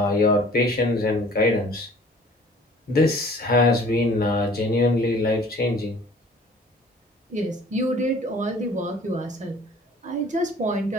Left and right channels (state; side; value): normal; both; correlation 0.51